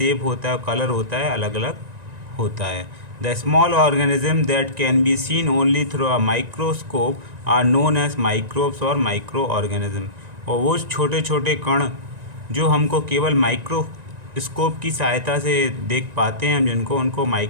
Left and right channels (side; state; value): left; late; 1.9 ms